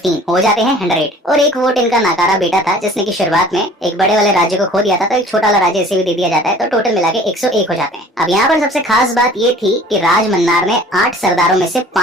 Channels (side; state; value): both; normal; correlation 0.48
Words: हो जाते हैं 100। और 1 वोट इनका नाकारा बेटा था जिसने की शुरुआत में एक बड़े वाले राज्य को खो दिया था, तो एक छोटा वाला राज्य इसे भी दे दिया जाता है, तो टोटल मिला के 101 हो जाते हैं। अब यहाँ पर सबसे खास बात ये थी कि राज मन्नार ने 8 सरदारों में से